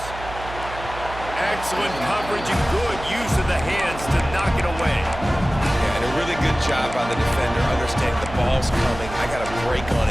Excellent coverage and good use of the hands to knock it away. Yeah, and a really good job by the defender, understanding the ball's coming. I got to break on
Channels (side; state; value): right; noise; hum, 12 dB below the sound